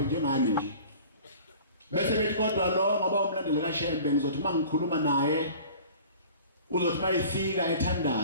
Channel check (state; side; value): inverted; both; correlation -0.44